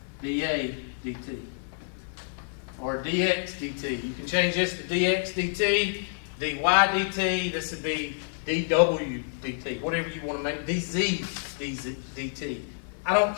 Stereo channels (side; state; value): right; silent; 56 dB below the other